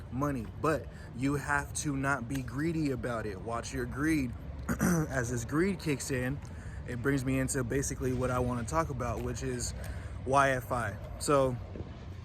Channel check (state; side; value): identical; both; correlation 1.00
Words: money. But you have to not be greedy about it. Watch your greed. As this greed kicks in, it brings me into basically what I want to talk about, which is YFI. So